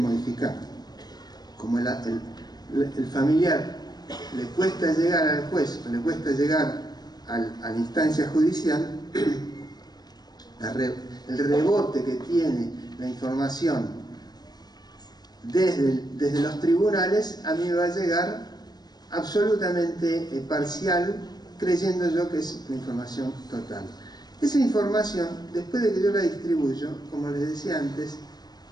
Como el familiar le cuesta llegar al juez, o le cuesta llegar a la instancia judicial, el rebote que tiene la información desde los tribunales a mí me va a llegar absolutamente parcial, creyendo yo que es la información total. Esa información, después de que yo la distribuyo, como les decía antes,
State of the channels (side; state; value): right; late; 0.19 ms